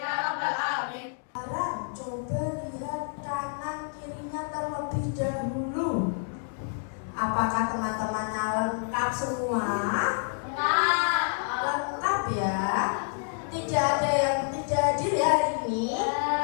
rabbal alamin. Sekarang coba lihat kanan kirinya terlebih dahulu. Apakah teman-temannya lengkap semua? Lengkap ya. Tidak ada yang tidak hadir ya hari ini.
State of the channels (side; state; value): right; silent; digital silence